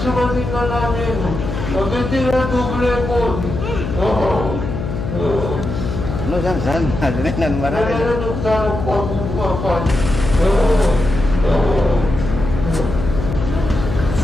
tinggal namin. Nagtitira double ko. No jangan, jangan marah.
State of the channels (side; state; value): left; noise; hum, 5 dB below the sound